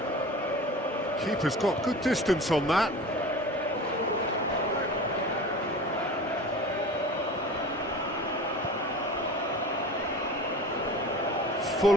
Keeper's got good distance on that. Full.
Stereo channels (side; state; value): both; normal; correlation 0.36